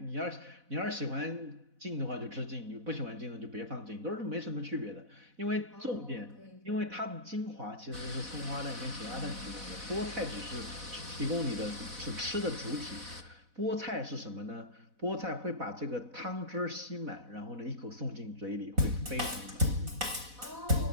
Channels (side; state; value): left; late; 4.1 ms